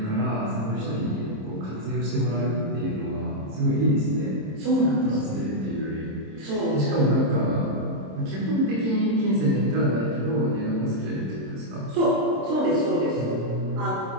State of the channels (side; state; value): left; late; 26 ms